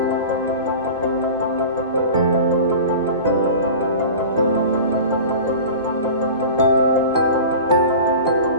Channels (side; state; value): both; inverted; correlation -0.36